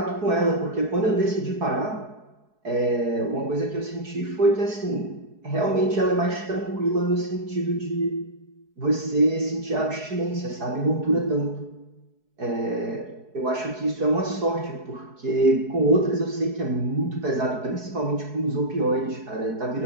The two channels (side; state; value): left; late; 4.7 ms